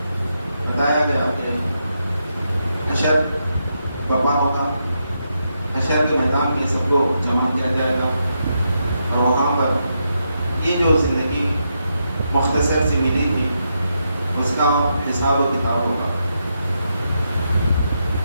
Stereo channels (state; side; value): inverted; both; correlation -0.83